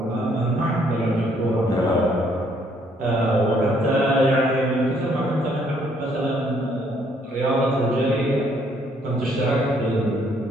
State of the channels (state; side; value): normal; both; correlation 0.67